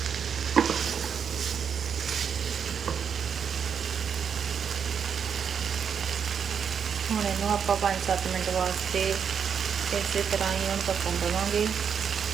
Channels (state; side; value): quieter; left; 7.2 dB